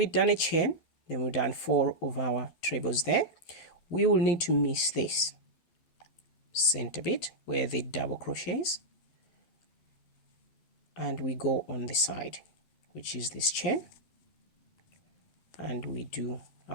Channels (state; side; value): late; right; 12 ms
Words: done a chain, then we've done 4 of our trebles there. We will need to miss this center bit where the double crochets, and we go on the side, which is this chain, and we do